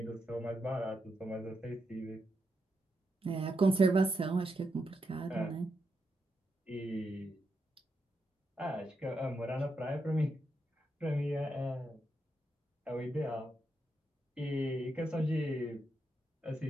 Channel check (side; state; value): both; normal; correlation 0.83